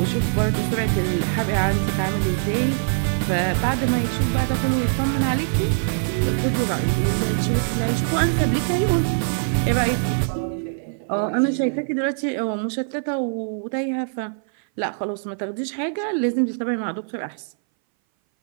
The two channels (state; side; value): silent; left; 60 dB below the other